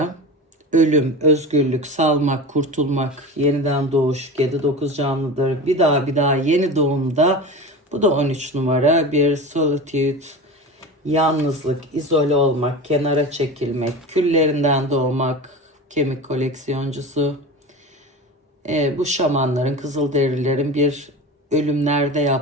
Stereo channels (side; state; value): both; normal; correlation 0.30